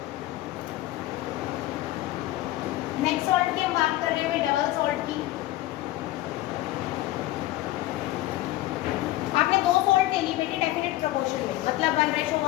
नेक्स्ट सॉल्ट की हम बात कर रहे हैं डबल सॉल्ट की। आपने 2 सॉल्ट ले ली बेटे डेफिनेट प्रोपोर्शन में, मतलब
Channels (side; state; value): right; quieter; 16.6 dB